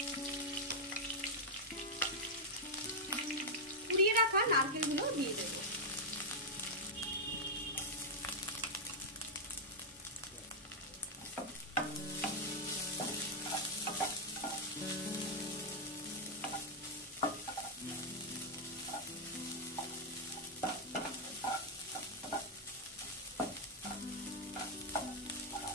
কুড়িয়ে রাখা নারকেলগুলো দিয়ে দেব।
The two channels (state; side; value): normal; both; correlation -0.03